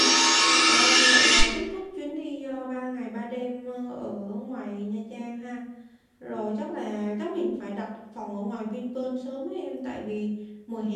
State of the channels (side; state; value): both; identical; correlation 1.00